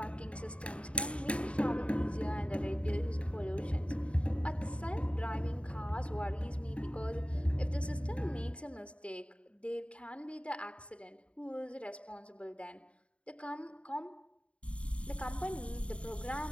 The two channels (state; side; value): late; right; 0.061 ms